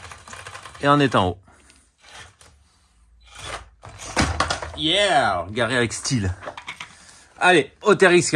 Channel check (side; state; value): both; identical; correlation 1.00